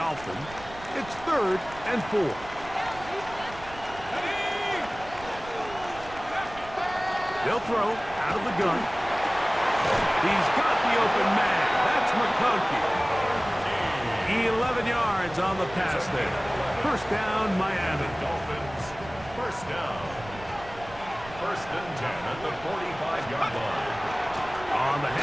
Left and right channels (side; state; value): right; noise; rumble, 17 dB below the sound